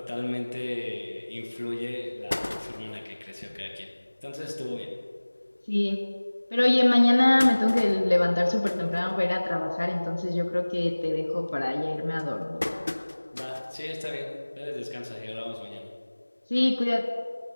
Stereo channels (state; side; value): inverted; both; correlation -1.00